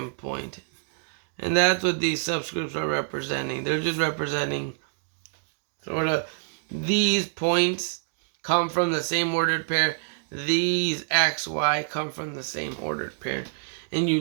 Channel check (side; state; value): left; silent; digital silence